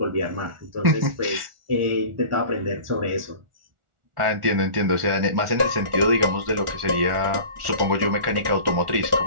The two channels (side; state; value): left; late; 1.4 ms